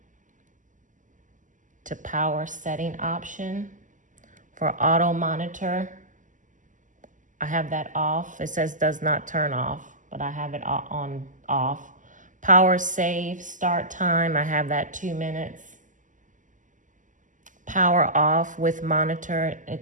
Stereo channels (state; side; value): late; left; 0.37 ms